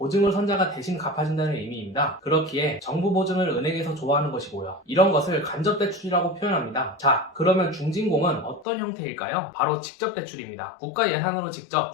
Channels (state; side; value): drops out; right; at 8.7 s